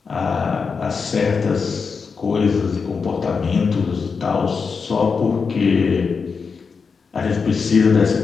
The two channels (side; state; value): right; quieter; 5.3 dB